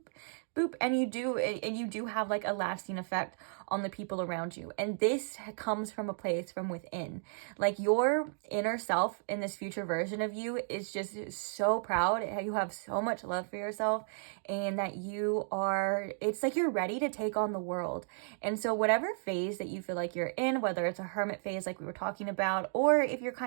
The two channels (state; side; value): silent; left; digital silence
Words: boop, and you do have like a lasting effect on the people around you. And this comes from a place from within. Like your inner self in this future version of you is just so proud. You have so much love for yourself, and that it's like you're ready to take on the world. And so whatever phase that you feel like you're in, whether it's a hermit phase like we were talking about, or if you're